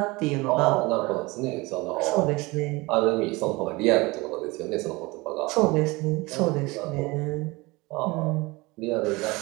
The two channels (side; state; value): left; quieter; 23.5 dB